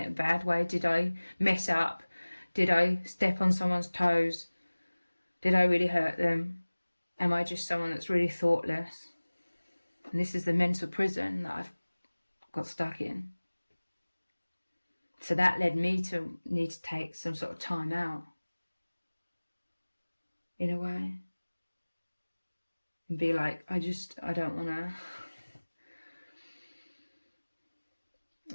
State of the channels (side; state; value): both; inverted; correlation -1.00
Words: in a bad way? Did I mess up? Did I step on someone's toes? Did I really hurt them? Am I just someone that's really thoughtless? And this is the mental prison that I've got stuck in. So that led me to need to take some sort of time out, in a way, and be like, I don't want to,